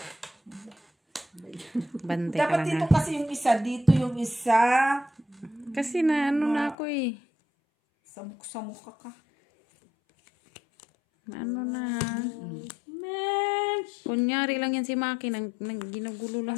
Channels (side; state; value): right; drops out; at 6.8 s